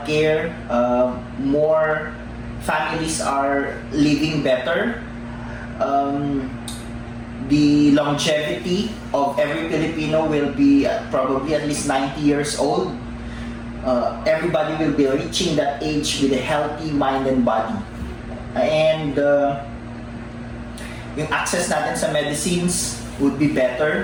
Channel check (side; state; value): both; identical; correlation 1.00